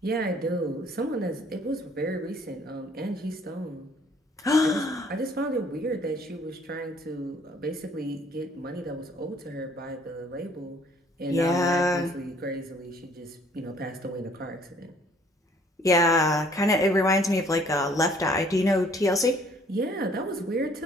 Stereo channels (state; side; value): normal; both; correlation 0.59